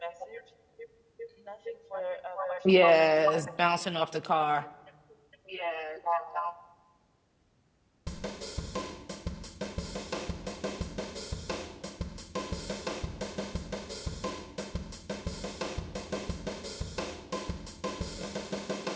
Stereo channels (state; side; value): identical; both; correlation 1.00